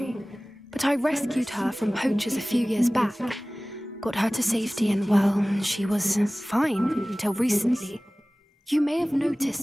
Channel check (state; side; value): normal; both; correlation 0.98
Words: but I rescued her from poachers a few years back. Got her to safety and, well, she was fine until recently. You may have